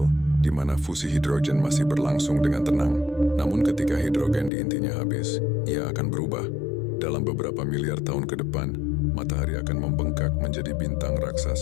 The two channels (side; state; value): right; drops out; at 4.5 s